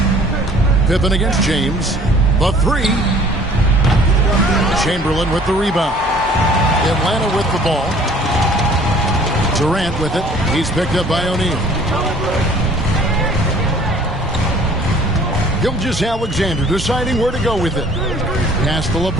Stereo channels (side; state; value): both; normal; correlation 0.53